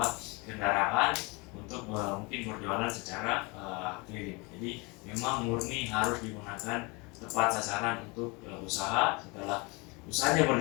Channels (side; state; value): right; quieter; 27.8 dB